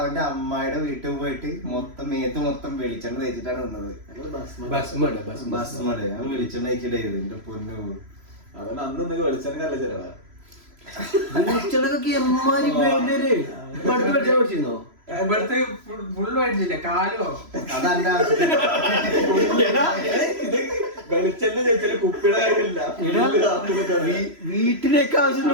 അമ്മായിയുടെ വീട്ടിൽ പോയിട്ട് മേത്ത് മൊത്തം വെളിച്ചെണ്ണ തേച്ചിട്ടാണ് നിന്നത്. ബസ്മട് ഞാൻ വെളിച്ചെണ്ണ തേച്ചിട്ടായിരുന്നു എന്റെ പൊന്നു. അതുകൊണ്ട് അന്ന് വെളിച്ചെണ്ണ നല്ല ചെലവാ. വെളിച്ചെണ്ണക്കൊക്കെ എമ്മാരി പഠിച്ചിരുന്നോ? ഇവിടുത്തെ ഫുള്ള് മേടിച്ചില്ലേ കാലോ? അതല്ല വെളിച്ചെണ്ണ ചേച്ചില് കുപ്പിയുടെ കാര്യമില്ല. വീട്ടിലേക്ക് ആവശ്യത്തിന്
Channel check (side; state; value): left; late; 3.0 ms